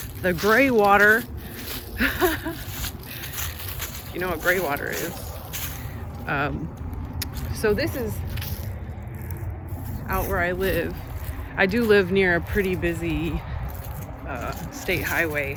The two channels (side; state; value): both; identical; correlation 1.00